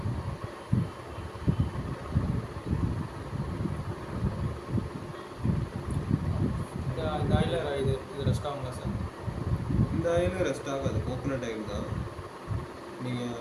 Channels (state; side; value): identical; both; correlation 1.00